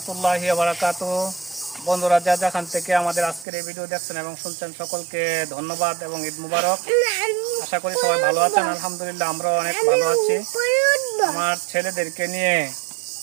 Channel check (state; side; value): drops out; left; at 3.5 s